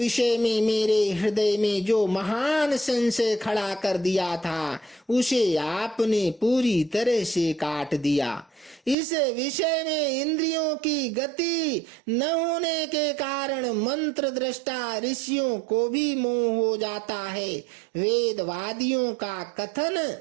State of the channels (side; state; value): left; drops out; at 9.0 s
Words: में मेरे हृदय में जो महान संशय खड़ा कर दिया था उसे आपने पूरी तरह से काट दिया। इस विषय में इंद्रियों की गति न होने के कारण मंत्र दृष्टा ऋषियों को भी मोह हो जाता है। वेदवादियों का कथन